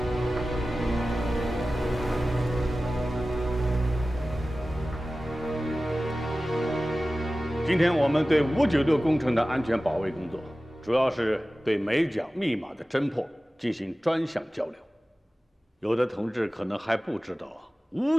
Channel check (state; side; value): normal; both; correlation 0.96